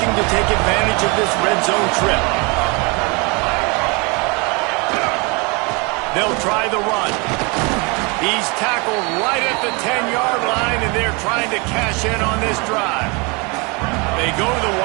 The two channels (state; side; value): quieter; left; 29.6 dB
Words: to take advantage of this red zone trip. They'll try the run. He's tackled right at the 10-yard line, and they're trying to cash in on this drive. They go to the